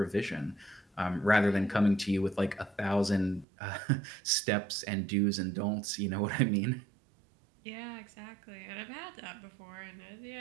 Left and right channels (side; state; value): left; drops out; at 3.5 s